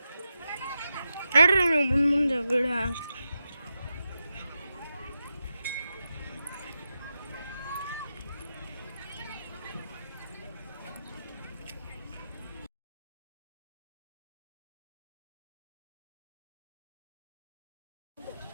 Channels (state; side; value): inverted; both; correlation -0.89